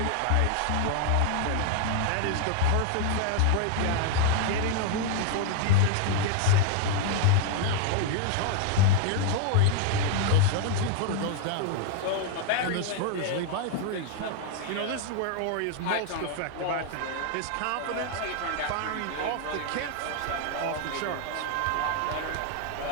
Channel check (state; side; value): different; both; correlation 0.00